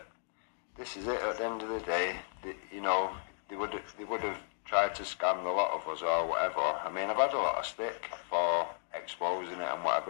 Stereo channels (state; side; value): silent; right; digital silence